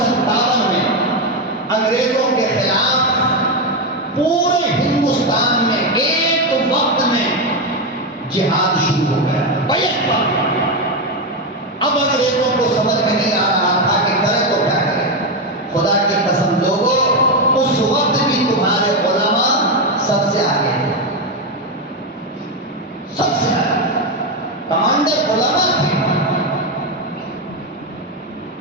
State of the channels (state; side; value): normal; both; correlation 0.09